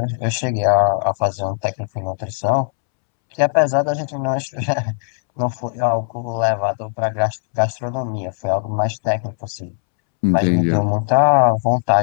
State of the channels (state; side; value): silent; right; 66 dB below the other